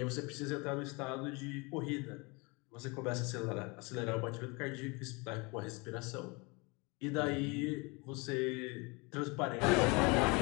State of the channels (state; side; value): quieter; right; 28.0 dB